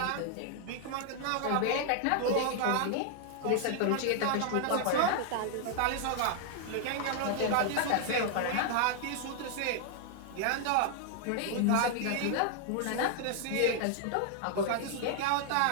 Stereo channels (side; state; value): both; different; correlation 0.00